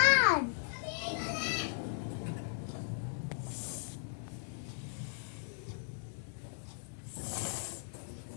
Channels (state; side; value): silent; right; digital silence